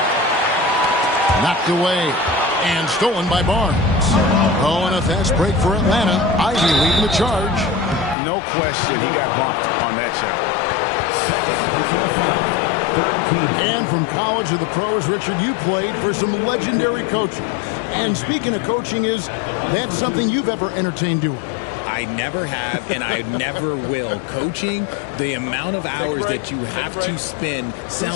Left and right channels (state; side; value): drops out; right; at 8.2 s